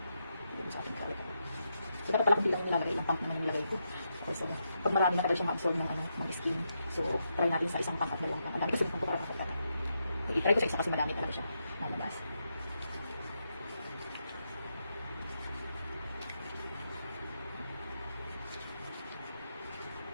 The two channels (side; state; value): both; inverted; correlation -0.83